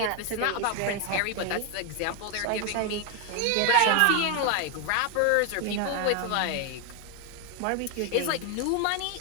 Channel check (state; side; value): different; both; correlation 0.01